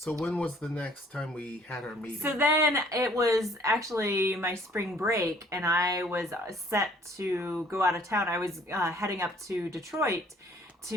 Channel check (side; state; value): both; normal; correlation 0.58